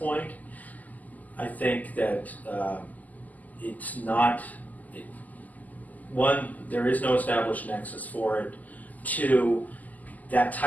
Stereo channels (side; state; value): right; late; 0.080 ms